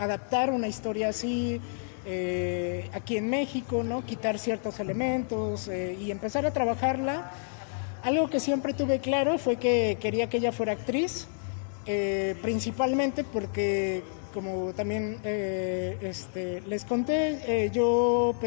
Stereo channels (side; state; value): right; silent; 58 dB below the other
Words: adaptar una historia así aquí en México, ¿no? Quitar ciertos elementos y empezar a trabajarla. Algo que siempre tuve claro fue que quería que ella fuera actriz, principalmente porque, como también les conté, yo,